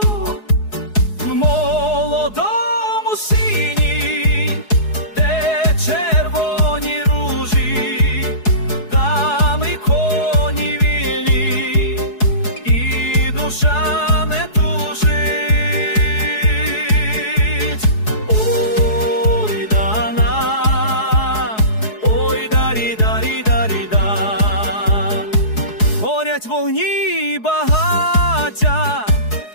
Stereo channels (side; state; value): right; late; 4.7 ms